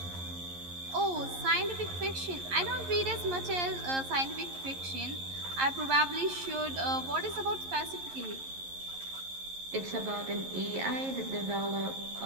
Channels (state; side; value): late; left; 11 ms